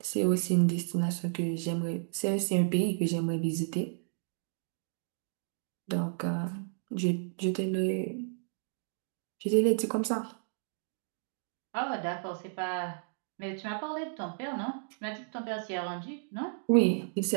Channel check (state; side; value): silent; left; digital silence